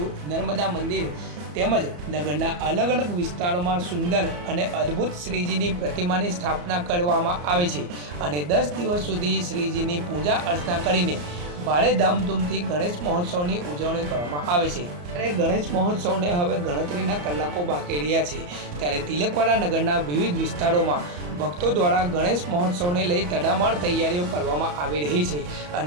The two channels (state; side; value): late; left; 34 ms